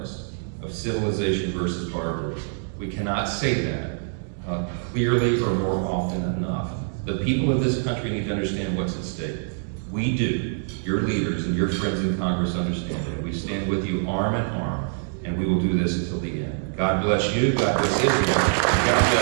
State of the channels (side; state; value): left; silent; digital silence